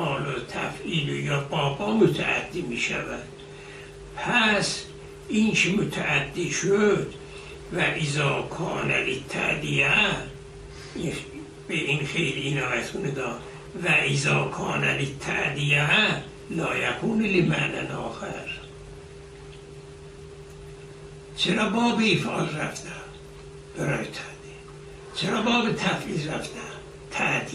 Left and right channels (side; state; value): both; identical; correlation 1.00